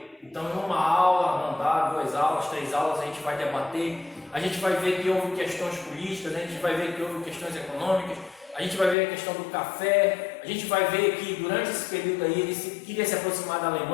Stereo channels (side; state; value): right; drops out; at 9.0 s